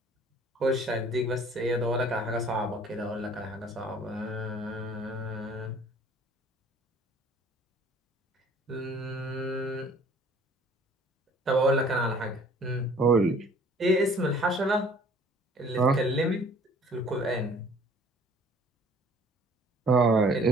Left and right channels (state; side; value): normal; both; correlation 0.54